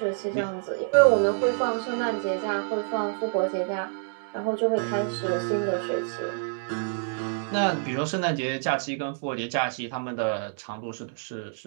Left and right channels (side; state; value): left; silent; digital silence